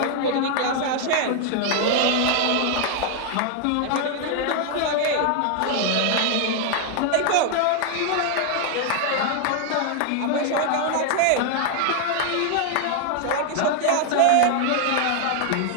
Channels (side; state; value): both; different; correlation 0.00